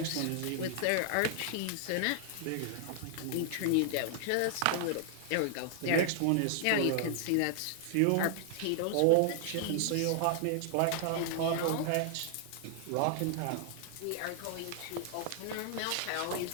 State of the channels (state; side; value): different; both; correlation 0.00